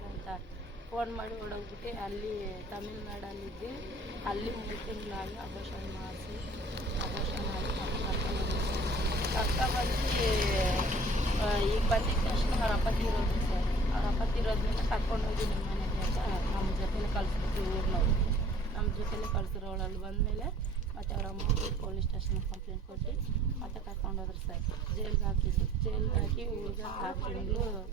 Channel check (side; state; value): both; normal; correlation 0.53